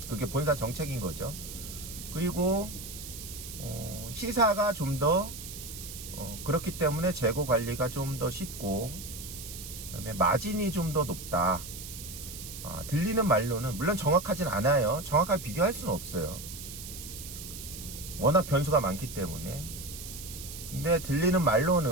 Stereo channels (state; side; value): noise; right; hiss, 11 dB below the sound